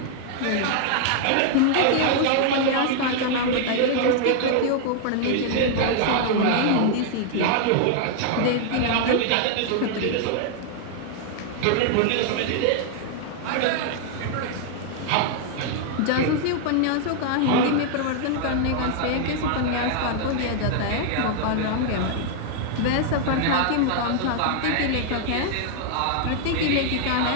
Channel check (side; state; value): both; different; correlation 0.00